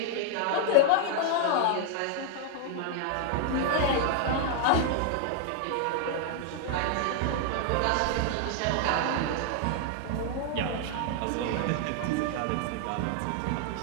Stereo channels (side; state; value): both; different; correlation -0.01